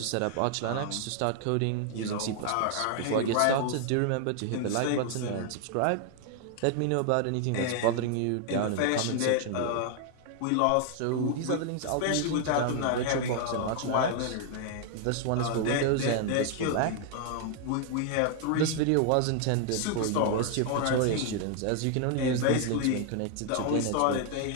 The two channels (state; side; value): different; both; correlation 0.00